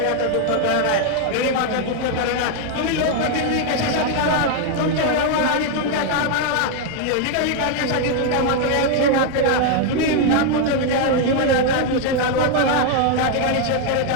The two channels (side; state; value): both; different; correlation 0.00